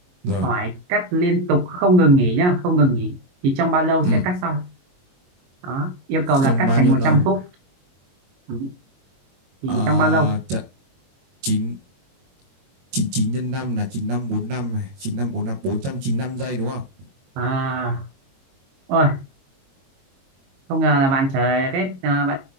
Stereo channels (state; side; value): late; left; 22 ms